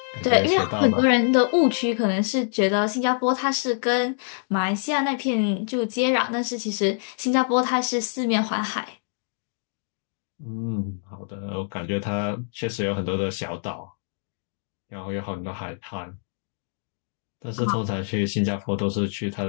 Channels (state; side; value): silent; right; digital silence